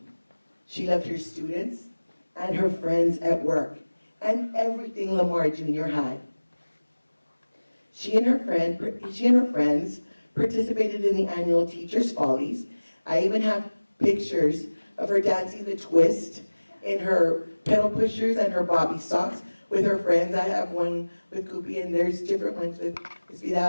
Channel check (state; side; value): inverted; both; correlation -1.00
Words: she loved her students and her friends at work, and everything Lamar Junior High. She and her friends participated in the annual Teachers' Follies. I even have pictures of her dancing the twist in her pedal pushers and her bobby socks with her friends. I have one with Koopy, and there's different ones with Ms.